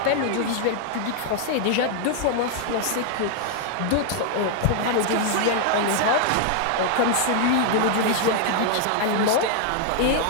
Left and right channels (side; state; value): both; different; correlation 0.00